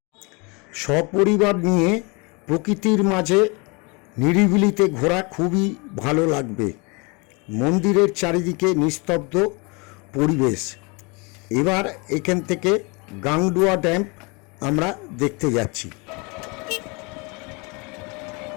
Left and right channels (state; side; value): quieter; right; 29.8 dB